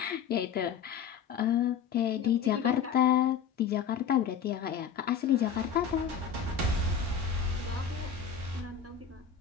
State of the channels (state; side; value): quieter; right; 7.4 dB